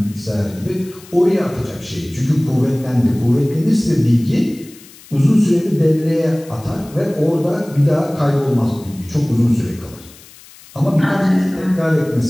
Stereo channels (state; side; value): noise; left; hiss, 22 dB below the sound